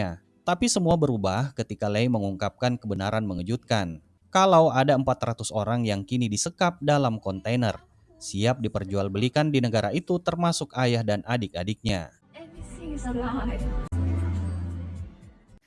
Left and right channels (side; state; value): both; identical; correlation 1.00